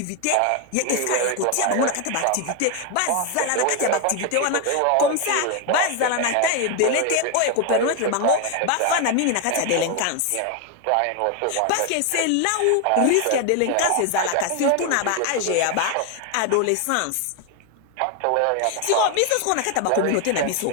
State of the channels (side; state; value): both; different; correlation 0.01